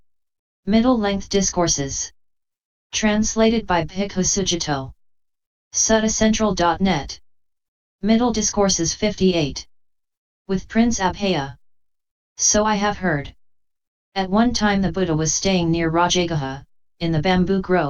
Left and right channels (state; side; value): identical; both; correlation 1.00